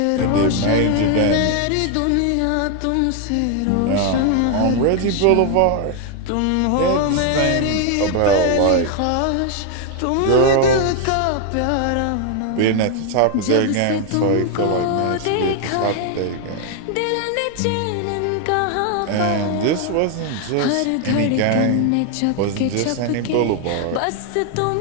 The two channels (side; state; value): both; different; correlation 0.01